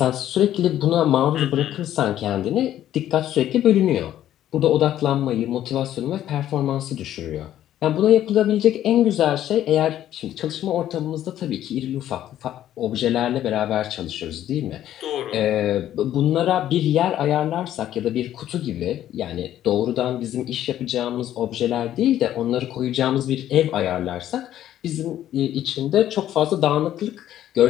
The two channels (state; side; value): quieter; right; 12.0 dB